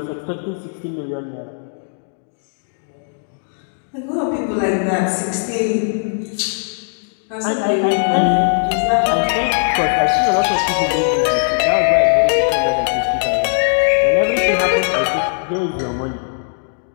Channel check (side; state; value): right; silent; digital silence